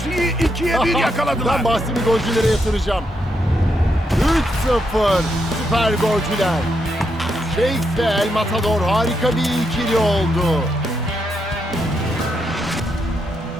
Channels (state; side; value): normal; both; correlation 0.80